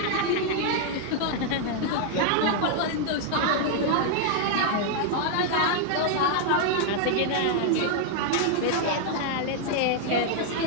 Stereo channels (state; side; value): different; both; correlation 0.00